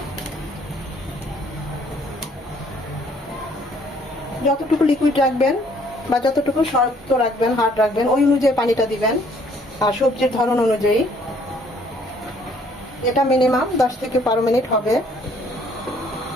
যতটুকু লিকুইড রাখবেন বা যতটুকু শক্ত রাখবেন, হার্ড রাখবেন, ওই অনুযায়ী পানিটা দিবেন আর সবজির ধরন অনুযায়ী। এটা মিনিমাম 10 থেকে 12 মিনিট হবে।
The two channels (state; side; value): normal; both; correlation 0.62